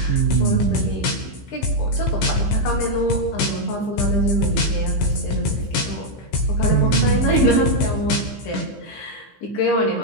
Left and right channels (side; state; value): right; late; 15 ms